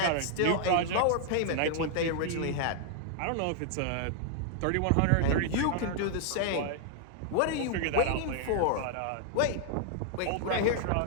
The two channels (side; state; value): both; different; correlation -0.01